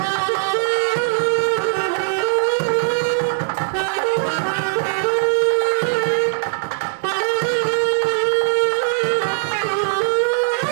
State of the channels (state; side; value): silent; left; digital silence